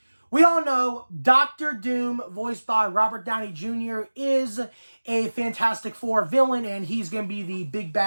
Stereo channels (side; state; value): both; inverted; correlation -1.00